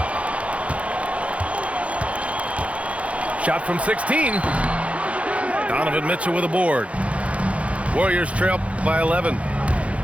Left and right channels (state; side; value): late; left; 0.063 ms